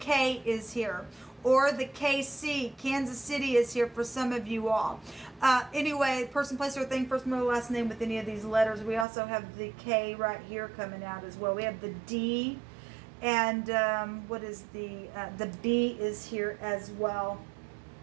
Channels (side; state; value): left; drops out; at 9.1 s